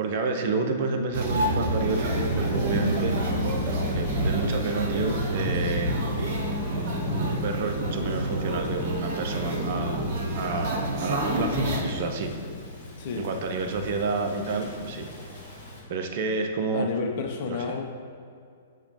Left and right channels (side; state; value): both; inverted; correlation -0.40